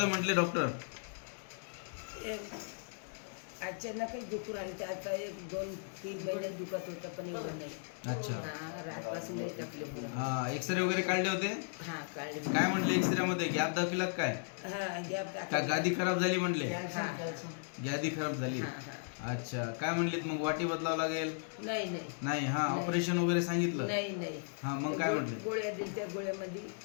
म्हटले डॉक्टर? अचानकच दुखून आले. ते आता 1-2-3 महिने दुखत होतं पण एवढं नाही. अच्छा. रातपासून नाही तकलीफ. हा, एक्सरे वगैरे काढले होते? हा काढले. काय म्हटले एक्सरे मध्ये? गॅप दाखविला काय? हा गॅप का गादी खराब झाली म्हटले? हा गादी खराब झाली. अच्छा. काय म्हणलीत मग? वाटी बदलावं लागेल? नाही. नाही. हा, ऑपरेशन वगैरे सांगितलं? नाही. हा, मग काय म्हटले? गोळ्या दिल्या, त्या गोळ्यामध्ये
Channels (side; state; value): right; silent; digital silence